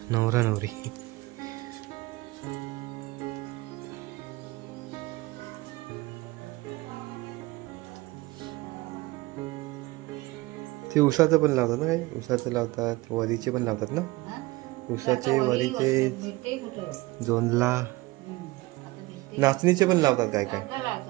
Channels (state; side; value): quieter; left; 21.2 dB